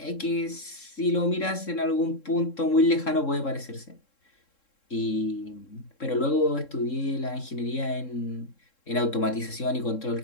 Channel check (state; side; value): late; right; 3.7 ms